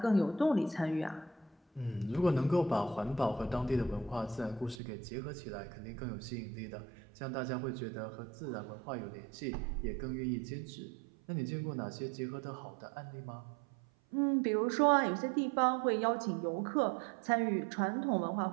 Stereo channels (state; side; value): drops out; left; at 4.8 s